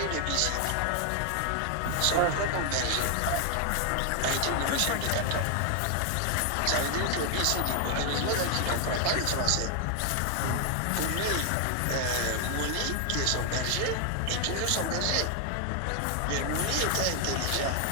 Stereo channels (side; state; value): both; different; correlation 0.00